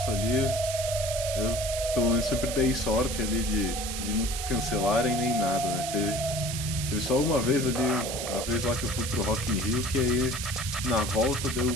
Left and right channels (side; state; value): right; noise; hiss, 5 dB below the sound